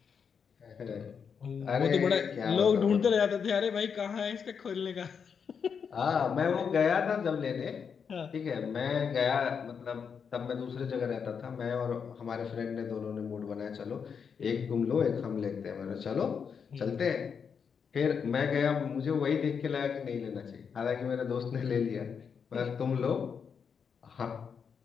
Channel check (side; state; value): right; quieter; 6.6 dB